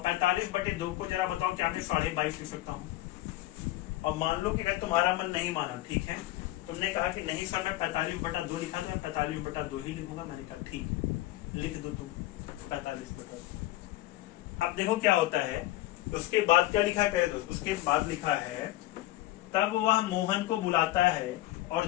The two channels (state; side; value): quieter; right; 16.7 dB